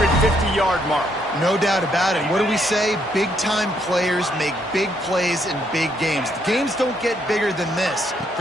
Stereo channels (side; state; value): both; normal; correlation 0.73